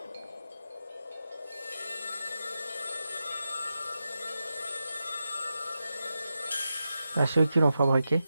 À ceux qui l'ont fabriqué.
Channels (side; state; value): both; inverted; correlation -0.90